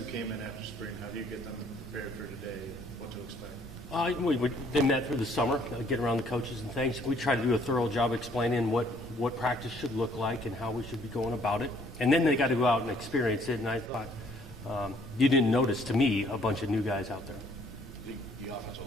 came in after spring, how do you get them prepared for today? What to expect? They met through the summer, get around the coaches and things. We try to do a thorough job explaining what practice should look like and how we should be going about it. And then they got to go out and experience it. And I thought, you didn't notice, to me, a bunch of new guys out there. The offensive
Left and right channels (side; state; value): both; normal; correlation 0.62